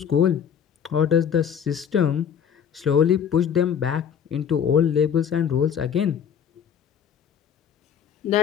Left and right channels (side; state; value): right; quieter; 8.1 dB